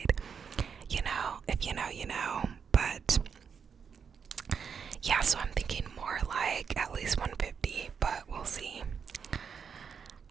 If you know. But yeah, so I'm thinking more like at least 150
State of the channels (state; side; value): quieter; left; 6.6 dB